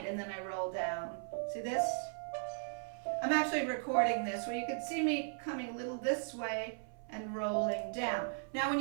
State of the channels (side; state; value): left; silent; 53 dB below the other